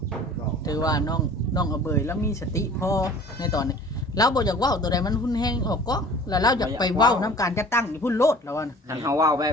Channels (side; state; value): both; normal; correlation 0.46